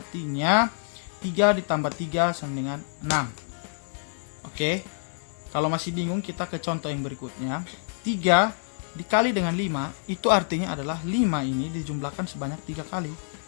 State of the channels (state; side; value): silent; right; digital silence